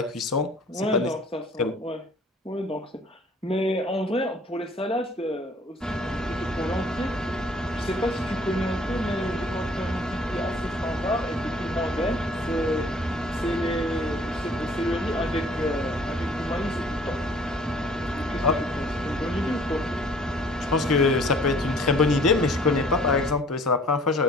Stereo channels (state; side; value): normal; both; correlation 0.55